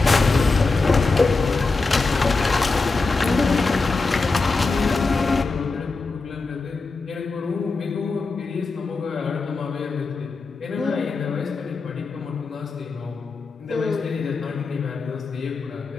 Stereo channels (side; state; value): right; quieter; 3.9 dB